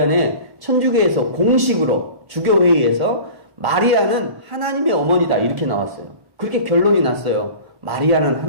천주교에서 공식으로 주교회의에서 마리아는 하나님의 어머니다, 이렇게 나왔어요. 그렇게 결론이 났어요. 마리아는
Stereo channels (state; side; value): late; left; 1.1 ms